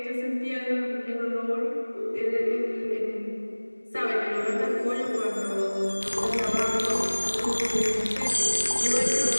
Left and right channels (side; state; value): both; inverted; correlation -1.00